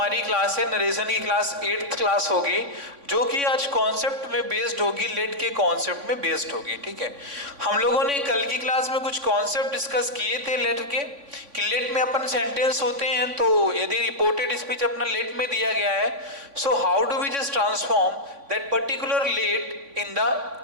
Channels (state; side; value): late; left; 3.5 ms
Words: class है, narration की क्लास 8th क्लास होगी, जो कि आज कॉन्सेप्ट में बेस्ड होगी, लेट के कॉन्सेप्ट में बेस्ड होगी। ठीक है, हम लोगों ने कल की क्लास में कुछ कॉन्सेप्ट डिस्कस किए थे लेट के, कि लेट में अपन सेंटेंस होते हैं, तो यदि रिपोर्टेड स्पीच अपना लेट में दिया गया है, so how do we just transform that particular let in